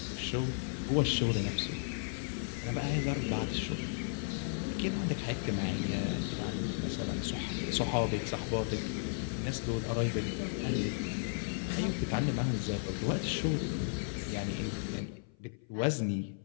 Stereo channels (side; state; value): right; silent; 55 dB below the other